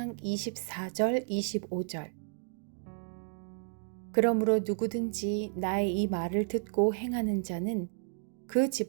24절 25절 그러므로 누구든지 나의 이 말을 듣고 행하는 자는 그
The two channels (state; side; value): silent; left; 56 dB below the other